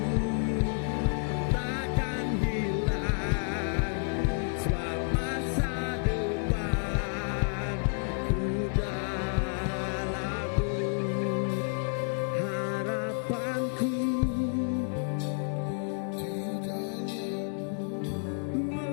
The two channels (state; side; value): silent; right; 58 dB below the other